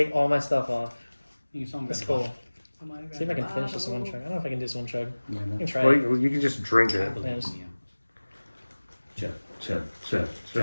all my stuff off. You saw That's cool. See if I can finish this one chug. I don't know if I can do this one chug. I can try Well, it. you can just drink it. Yeah, just- Chug, Chug,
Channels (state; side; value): inverted; both; correlation -1.00